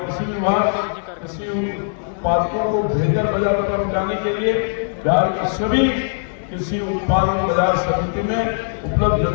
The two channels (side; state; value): right; silent; 66 dB below the other